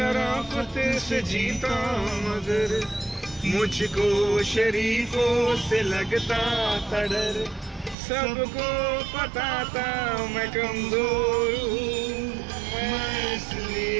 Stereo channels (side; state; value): left; drops out; at 8.0 s